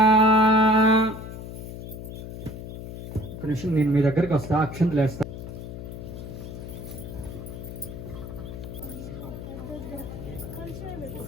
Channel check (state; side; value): noise; left; hum, 9 dB below the sound